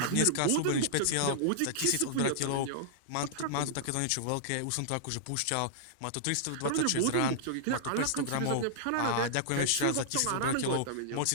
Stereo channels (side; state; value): both; different; correlation -0.01